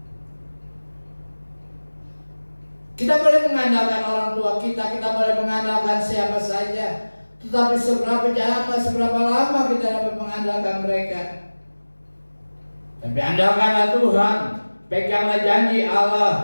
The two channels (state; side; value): inverted; both; correlation -1.00